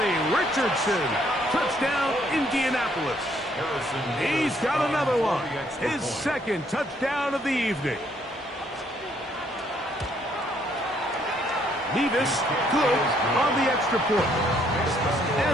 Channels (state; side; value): normal; both; correlation 0.68